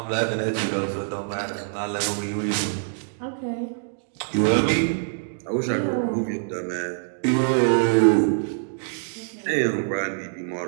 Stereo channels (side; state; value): left; silent; digital silence